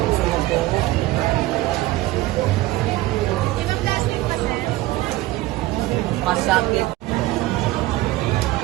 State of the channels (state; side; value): quieter; left; 17.7 dB